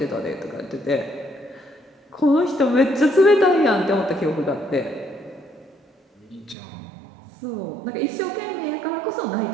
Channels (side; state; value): left; drops out; at 6.6 s